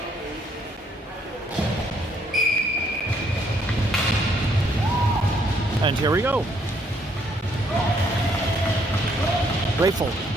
And here we go.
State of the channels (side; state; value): both; normal; correlation 0.68